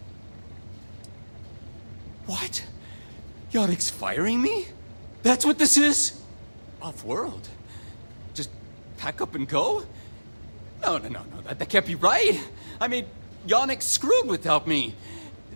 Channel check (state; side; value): inverted; both; correlation -1.00